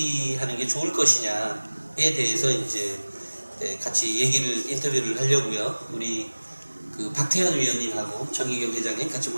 게 좋을 것이냐에 대해서 이제 같이 인터뷰를 하려고요. 우리 그 박태현 위원님하고 정희경 회장님 같이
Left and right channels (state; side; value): inverted; both; correlation -1.00